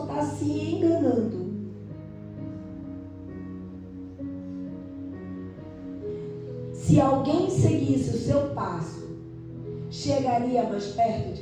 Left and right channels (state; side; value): identical; both; correlation 1.00